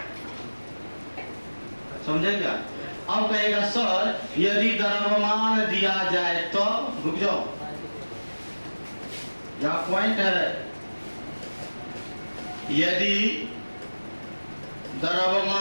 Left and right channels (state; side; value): inverted; both; correlation -1.00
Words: समझे क्या? अब कहेगा सर यदि द्रव्यमान दिया जाए तो, रुक जाओ, यह पॉइंट है, यदि